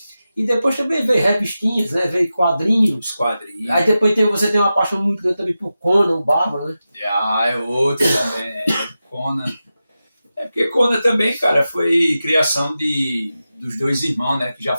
E depois também veio revistinhas, né? Veio quadrinhos. Aí depois você tem uma paixão muito grande também por Conan, o Bárbaro, né? É outro também, Conan. Porque Conan também, cara, foi criação dos dois irmãos, né? Que já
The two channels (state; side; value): inverted; both; correlation -0.92